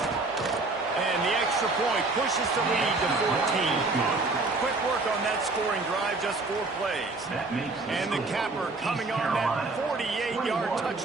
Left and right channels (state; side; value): quieter; left; 3.4 dB